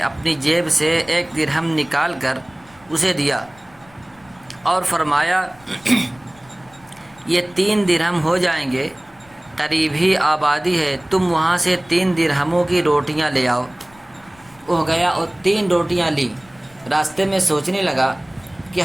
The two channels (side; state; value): left; noise; rumble, 28 dB below the sound